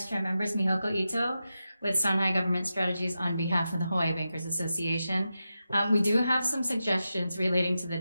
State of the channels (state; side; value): inverted; both; correlation -0.90